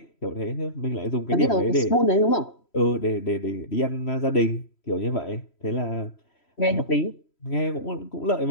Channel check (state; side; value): late; right; 3.1 ms